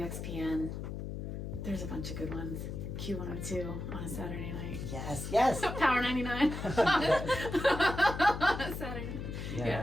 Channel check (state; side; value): noise; left; hum, 6 dB below the sound